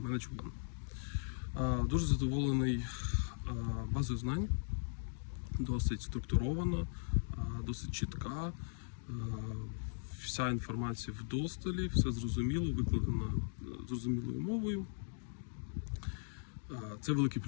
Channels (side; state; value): right; silent; digital silence